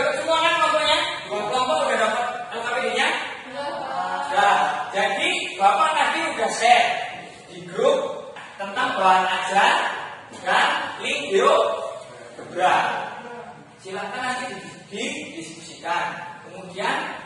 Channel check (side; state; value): both; identical; correlation 1.00